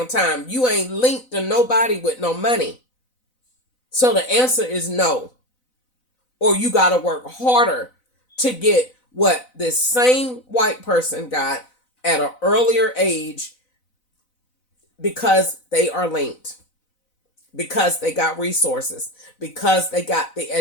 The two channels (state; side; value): late; right; 4.0 ms